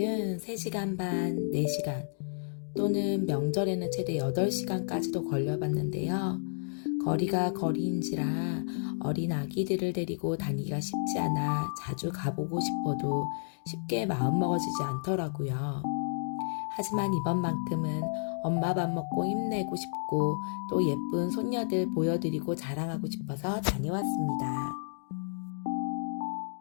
3시간 반, 4시간 또는 명절에는 최대 8시간까지도 걸려봤는데요. 거리가 거리인지라 어린 아기들을 데리고 다니기가 쉽지 않아 자주 가보고 싶어도 쉽게 마음먹어지지 않더라고요. 하지만 이번만큼은 엄마 밥 먹고 힘내고 싶고 또 예쁜 손녀들 보여드리고 자랑하고 싶어서 다녀왔습니다.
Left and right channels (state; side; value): silent; right; digital silence